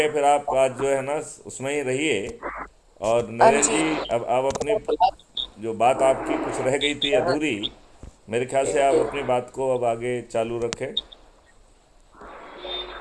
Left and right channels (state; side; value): identical; both; correlation 1.00